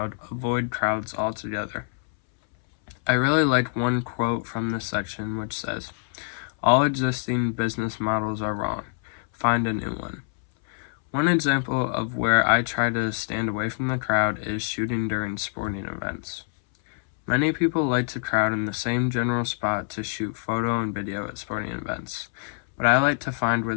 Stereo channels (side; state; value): right; silent; 61 dB below the other